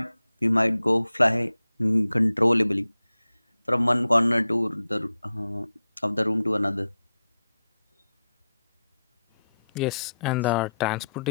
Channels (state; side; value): inverted; both; correlation -0.88